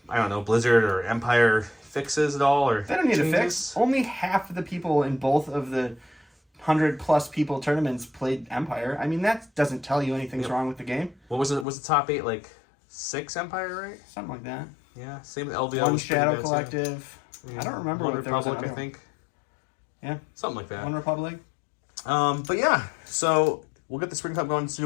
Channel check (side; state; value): right; drops out; at 11.7 s